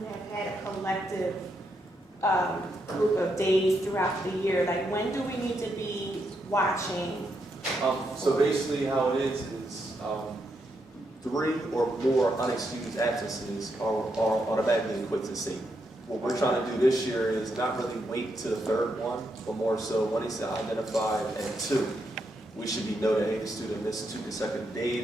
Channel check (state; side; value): normal; both; correlation 0.80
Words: had a collective group of days throughout the year. Like, when do we need to be watching? So basically how it is 3 or more unexcused absences are automatically equipped to C. What we're trying to do this year is not really wait to the 3rd one, but more so when it's identified at 2, we should be noted, hey, the student missed 2 consecutive